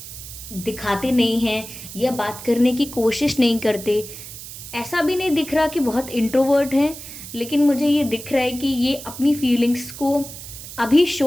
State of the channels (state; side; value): noise; right; hiss, 12 dB below the sound